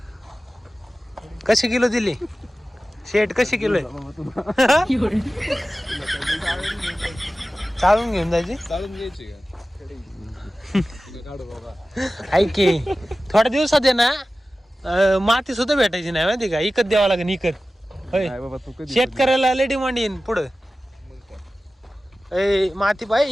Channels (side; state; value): both; normal; correlation 0.95